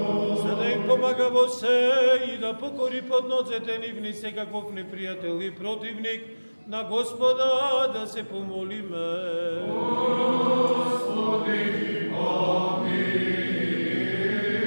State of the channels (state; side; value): inverted; both; correlation -1.00